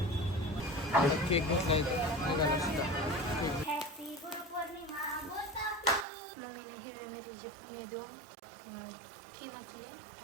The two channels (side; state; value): left; drops out; at 6.1 s